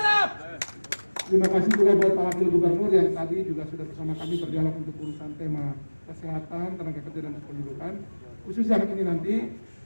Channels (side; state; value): both; inverted; correlation -1.00